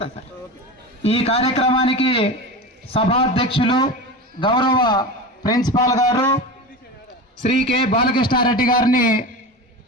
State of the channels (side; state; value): both; normal; correlation 0.27